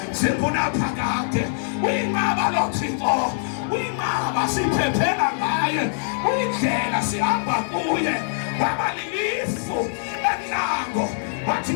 zikunaphakade. Uyinqaba lo Thixo, uyinqaba siphephela ngaye, uyindlela sihamba kuye. Waba lilifu enhlango, wathi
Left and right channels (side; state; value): right; silent; digital silence